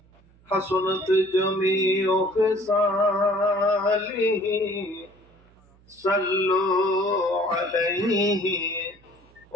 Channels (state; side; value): noise; right; hum, 29 dB below the sound